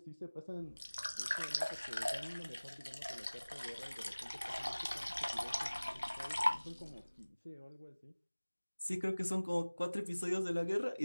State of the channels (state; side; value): inverted; both; correlation -1.00